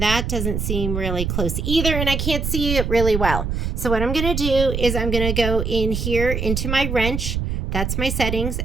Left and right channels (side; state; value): right; noise; rumble, 2 dB below the sound